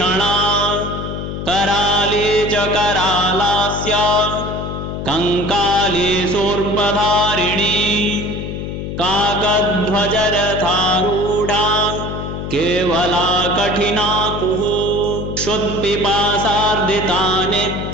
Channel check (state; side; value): noise; left; hum, 6 dB below the sound